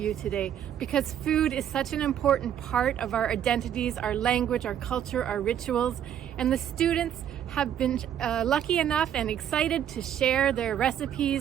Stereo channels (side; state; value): left; quieter; 9.9 dB